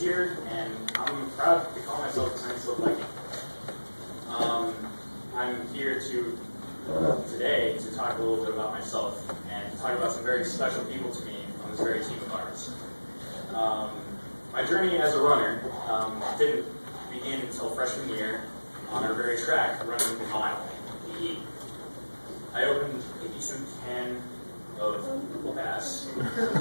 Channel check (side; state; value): both; inverted; correlation -1.00